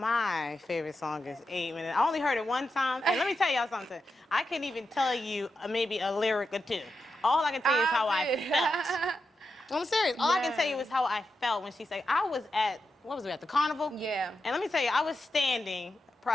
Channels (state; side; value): normal; both; correlation 0.87